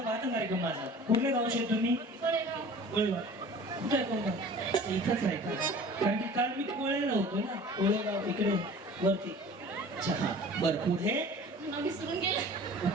पाहता कार्यक्रम माझा कुठल्या गावचे तुम्ही कोळेगाव कुठे आहे कोणता इथंच आहे का कारण की काल मी कोळेला होतो ना कोळेगाव इकडे वरती अच्छा हा बरं पुढे विसरून गेला.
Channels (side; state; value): both; normal; correlation 0.44